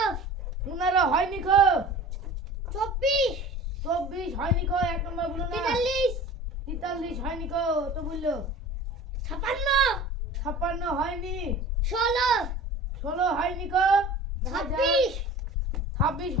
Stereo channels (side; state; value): both; normal; correlation 0.40